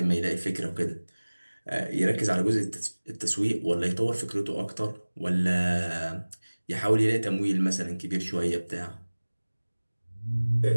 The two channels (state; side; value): inverted; both; correlation -1.00